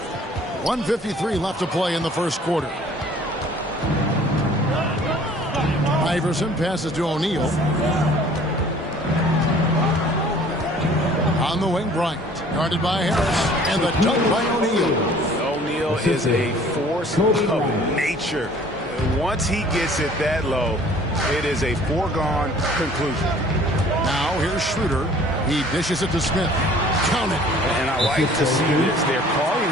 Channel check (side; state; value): both; normal; correlation 0.52